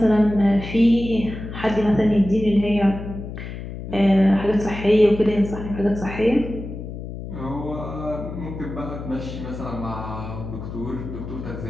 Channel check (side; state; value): left; noise; hum, 9 dB below the sound